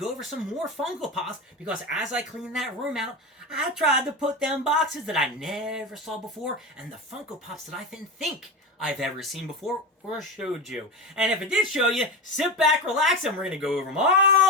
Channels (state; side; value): normal; both; correlation 0.21